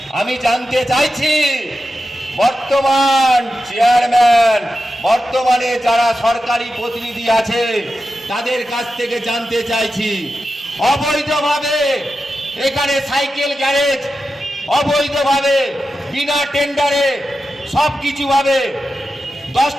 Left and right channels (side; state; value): both; normal; correlation 0.91